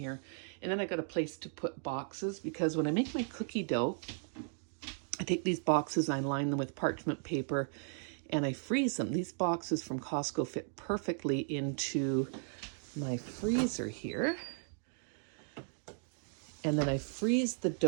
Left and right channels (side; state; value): left; silent; 54 dB below the other